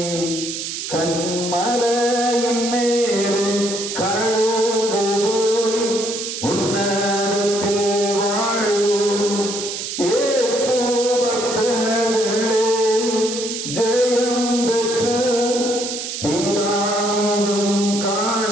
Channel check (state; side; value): noise; right; hiss, 5 dB below the sound